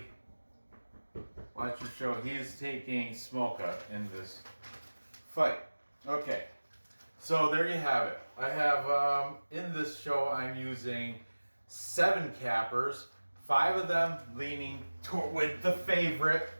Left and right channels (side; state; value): both; inverted; correlation -1.00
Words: Watch your show. He's taking Smolka in this fight. Okay. So there you have it. I have, in this show, I'm using 7 cappers. 5 of them leaning with the favorite,